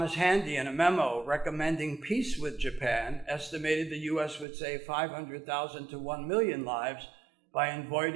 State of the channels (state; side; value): drops out; left; at 4.5 s